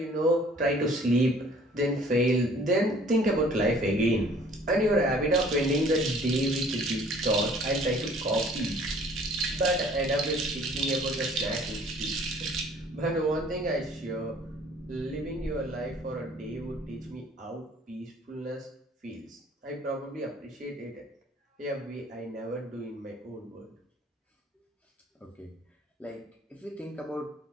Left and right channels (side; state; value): both; normal; correlation 0.54